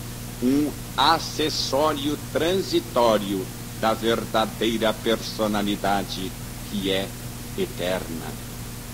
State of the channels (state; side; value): identical; both; correlation 1.00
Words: um acessório transitório da verdadeira personalidade que é eterna.